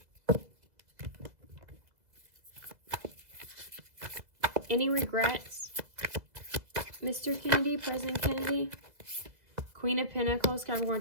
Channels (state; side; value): late; left; 2.0 ms